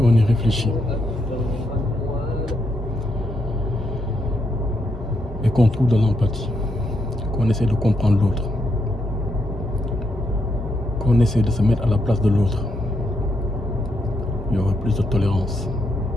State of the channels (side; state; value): both; normal; correlation 0.79